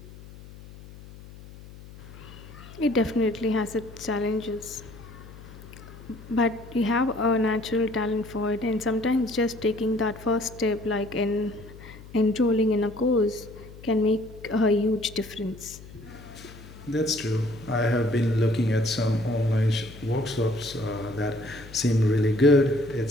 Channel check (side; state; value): left; noise; hum, 18 dB below the sound